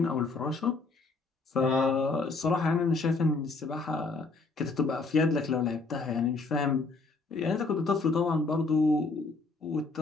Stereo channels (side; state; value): right; quieter; 3.8 dB